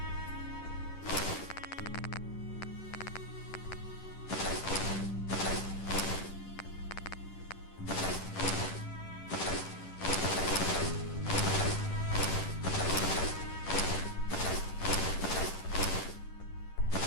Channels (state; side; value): late; right; 10 ms